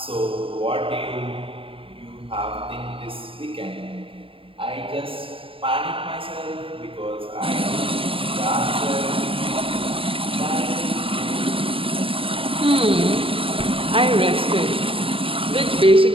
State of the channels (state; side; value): late; left; 0.26 ms